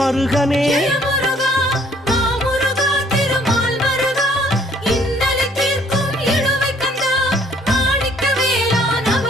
ஜெயமுருகா மாமுருகா திருமால் மருகா இன்னலை தீர்க்கும் இழுவை கந்தா மாணிக்கவேலா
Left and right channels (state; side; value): normal; both; correlation 0.61